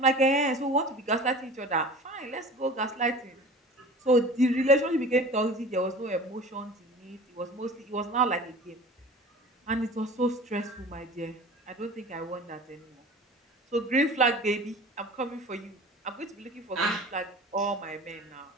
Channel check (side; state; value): both; normal; correlation 0.40